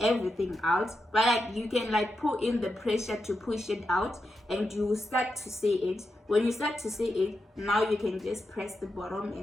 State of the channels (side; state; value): both; normal; correlation 0.87